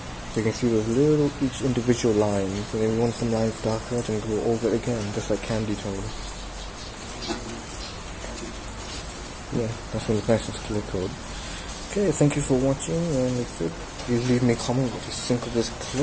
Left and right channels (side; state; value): both; identical; correlation 1.00